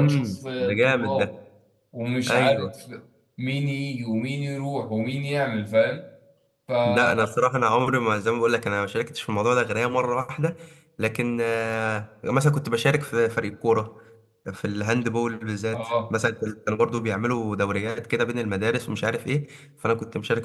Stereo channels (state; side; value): identical; both; correlation 1.00